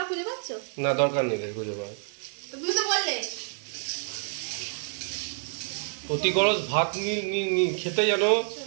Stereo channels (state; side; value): silent; left; 59 dB below the other